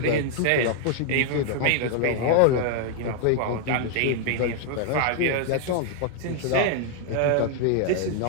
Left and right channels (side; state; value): both; different; correlation 0.00